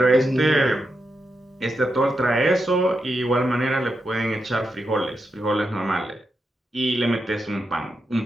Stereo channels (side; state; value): both; normal; correlation 0.86